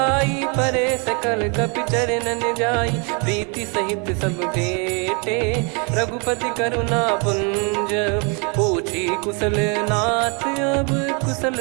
परे सकल कपि चरणन जाई। प्रीति सहित सब भेटे, रघुपति करुणा पुंज। पूछी कुशल नाथ अब,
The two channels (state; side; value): quieter; left; 34.3 dB